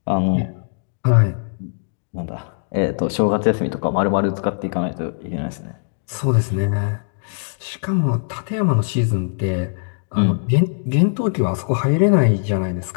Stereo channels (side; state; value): right; silent; digital silence